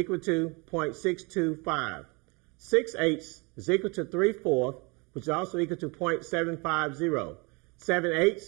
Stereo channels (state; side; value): quieter; left; 29.4 dB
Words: to 0.625. 6/8 is equal to 3/4, which is also equal to 0.750.